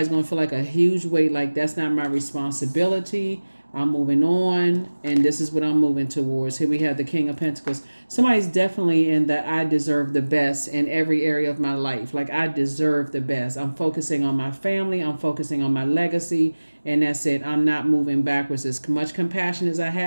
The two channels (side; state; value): both; inverted; correlation -1.00